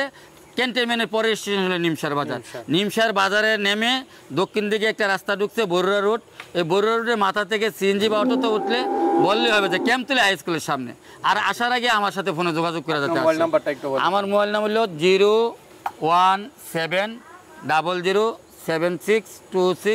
ক্যান্টনমেন্টের পরে স্টেশন হলো নিমসার বাজার। নিমসার বাজারে নেমে দক্ষিণ দিকে একটা রাস্তা ঢুকছে, বরুড়া রোড। এই বরুড়া রোডের মাথা থেকে সিএনজি বা অটোতে উঠলে বললেই হবে যে ক্যাম্পতলী হাই স্কুলের সামনে। আর আসার আগে আমার সাথে ফোনে যোগাযোগ করা যাতে মোবাইল নাম্বারটা একটু বলেন। আমার মোবাইল নাম্বার হলো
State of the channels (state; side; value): identical; both; correlation 1.00